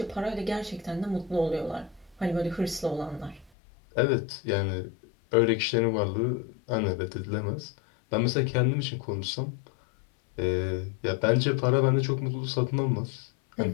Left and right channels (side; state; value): right; drops out; at 3.5 s